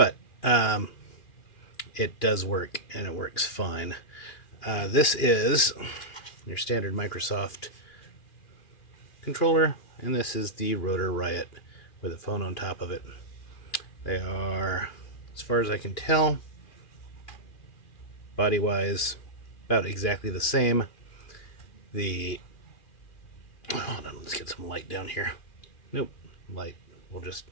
it does work, and it works fine. This is your standard Microsoft controller, and this is the Rotor Riot with a phone on top of it. They are, as far as I can tell, body-wise, about exactly the same. Hold on, let's get some light down here. Nope, light will just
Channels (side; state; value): right; late; 2.4 ms